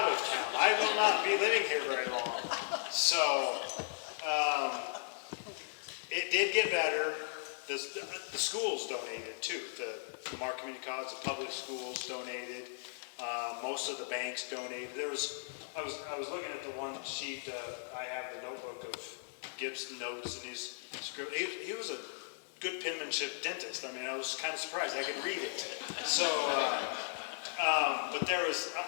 of town. I will not be living here very long. So it did get better. The schools donated too. The Lamar Community College, the public schools donated. Most of the banks donated. I was looking at the one sheet. I have the notebook of Gibb's notes and his script. He was a good penmanship dentist. I mean, I was kind of surprised. I could read it. So, but there was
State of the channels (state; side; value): silent; right; digital silence